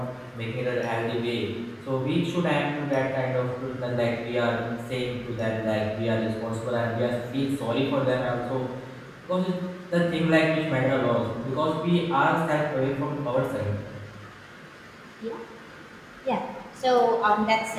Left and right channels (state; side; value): identical; both; correlation 1.00